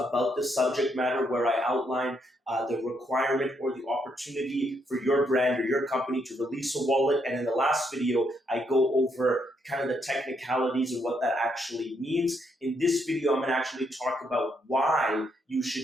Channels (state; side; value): normal; both; correlation 0.75